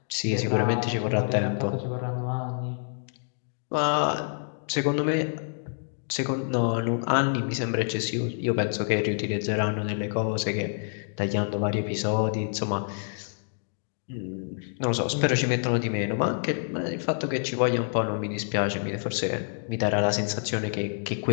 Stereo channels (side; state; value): right; silent; digital silence